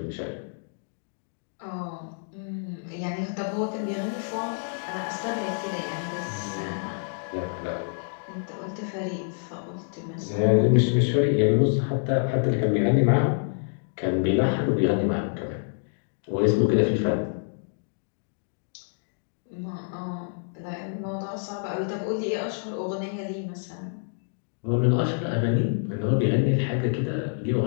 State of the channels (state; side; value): silent; right; digital silence